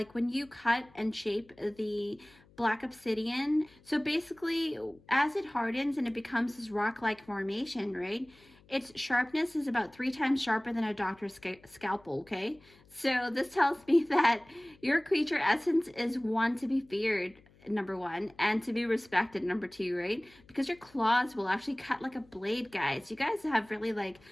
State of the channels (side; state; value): left; noise; hum, 28 dB below the sound